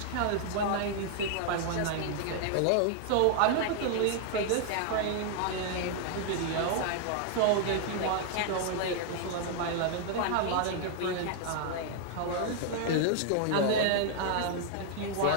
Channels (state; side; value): different; both; correlation 0.00